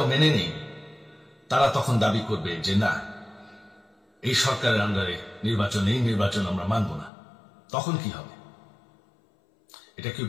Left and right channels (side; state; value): right; drops out; at 7.1 s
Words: মেনে নেই, তারা তখন দাবি করবে যে না, এই সরকারের আন্ডারে নির্বাচন, এই নির্বাচন আমরা মানব না। তখন কি হবে এটা কেউ